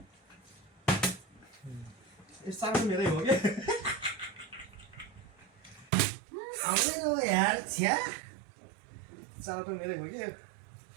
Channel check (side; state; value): left; drops out; at 5.9 s